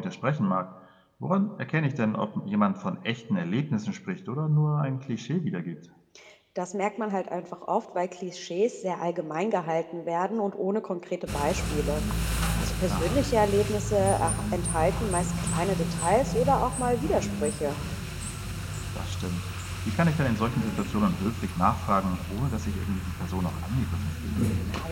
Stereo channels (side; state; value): both; identical; correlation 1.00